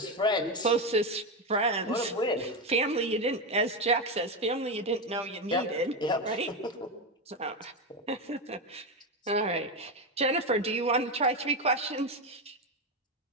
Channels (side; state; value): both; normal; correlation 0.12